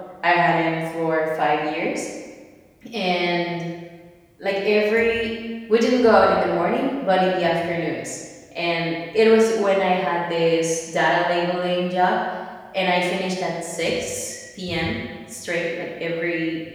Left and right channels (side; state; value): both; identical; correlation 1.00